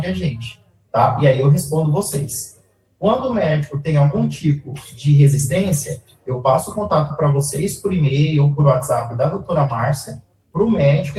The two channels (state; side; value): identical; both; correlation 1.00